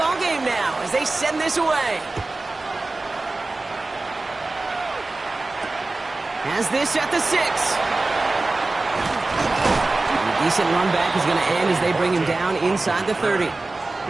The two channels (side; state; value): left; quieter; 3.2 dB